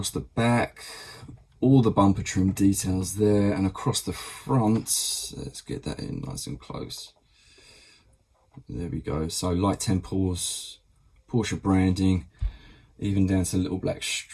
the back, all the bumper trim details there, and across the front, let's get that in nice and close. There we go. So light temples, Porsche branding, even down to a little black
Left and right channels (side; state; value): both; identical; correlation 1.00